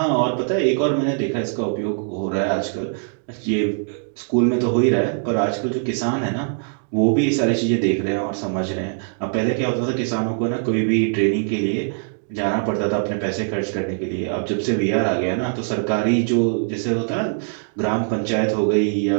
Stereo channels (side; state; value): left; silent; digital silence